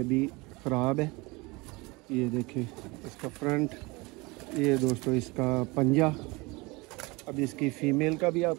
ख़राब है। ये देखें इसका फ्रंट, ये दोस्तों इसका पंजा। अब इसकी फ़ीमेल का भी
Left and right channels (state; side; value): quieter; left; 24.9 dB